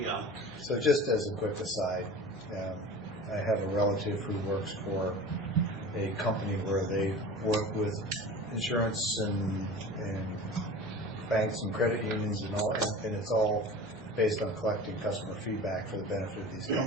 So just as a quick aside, I have a relative who works for a company where they work with insurance and banks and credit unions and all, and it's all based on collecting customer feedback for the benefit of these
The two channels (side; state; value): left; noise; hum, 23 dB below the sound